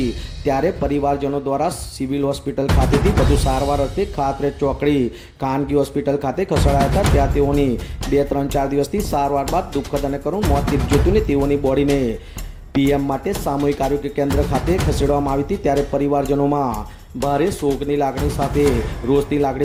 ત્યારે પરિવારજનો દ્વારા સિવિલ હોસ્પિટલ ખાતેથી વધુ સારવાર અર્થે ખાતરજ ચોકડી ખાનગી હોસ્પિટલ ખાતે ખસેડાયા હતા। ત્યાં તેઓની 2-3-4 દિવસથી સારવાર બાદ દુઃખદ અને કરુણ મોત નીપજ્યું હતું ને તેઓની બોડીને પીએમ માટે સામૂહિક આરોગ્ય કેન્દ્ર ખાતે ખસેડવામાં આવી હતી। ત્યારે પરિવારજનોમાં ભારે શોકની લાગણી સાથે રોષની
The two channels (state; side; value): identical; both; correlation 1.00